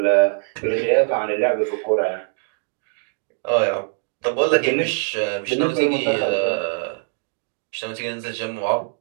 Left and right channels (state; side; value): silent; left; 57 dB below the other